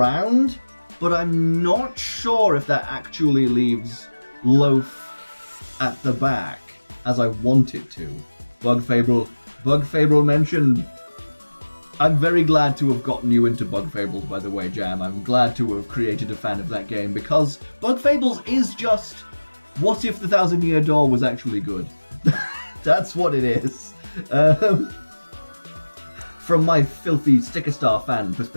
but I'm not sure if that actually leaves Loaf at the back as I want it to. Bug Fable mentioned. I'm very glad to have gotten you into Bug Fables, by the way, Jam. I'm glad to have created a fan of that game, because Bug Fables is just, what if the Thousand Year Door was actually good? That's what it is. From my filthy Sticker Star fan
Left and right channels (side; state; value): both; inverted; correlation -1.00